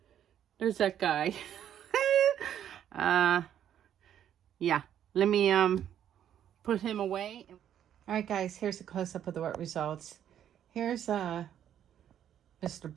There's that guy. Yeah, let me put him away. All right, guys, here's a close-up of the wet results. Here's Mr.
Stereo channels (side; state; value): left; quieter; 10.1 dB